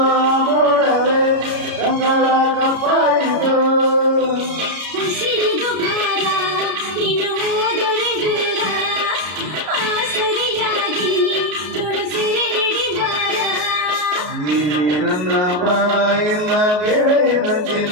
ನೋಡವೇ ಕಂಗಳ ಕಪ್ಪಾಯಿತು ಉಸಿರಿದು ಭಾರ ನೀನು ಹೋದರೆ ದೂರ ಆಸರಿಯಾಗಿ ತುಳಸಿರೆ ಹಿಡಿಬಾರ ನೀನೇ ನನ್ನ ಬಾಯಿನ ಗೆಳೆಯನ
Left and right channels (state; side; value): late; left; 33 ms